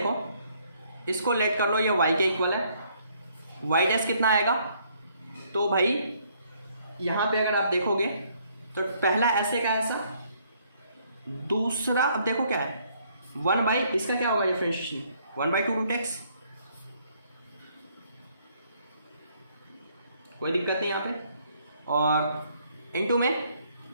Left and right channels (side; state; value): both; inverted; correlation -0.67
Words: इसको लेट कर लो, ये y के इक्वल है, y डैश कितना आएगा, तो भाई यहाँ पे अगर आप देखोगे तो पहला ऐसे का ऐसा, दूसरा अब देखो क्या है 1 बाई, इसका क्या होगा डिफरेंशिएशन 1/2 रूट एक्स, कोई दिक्कत नहीं यहाँ पे, और इनटू में